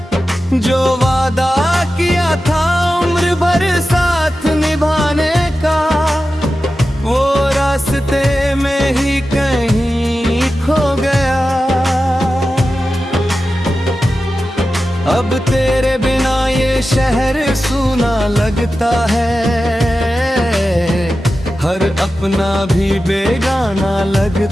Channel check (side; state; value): both; normal; correlation 0.93